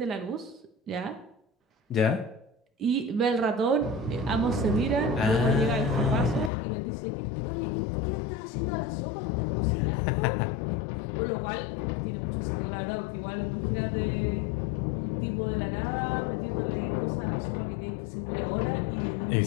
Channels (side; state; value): right; drops out; at 6.5 s